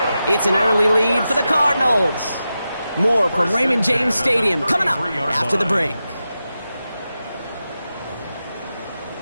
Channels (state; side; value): inverted; both; correlation -0.91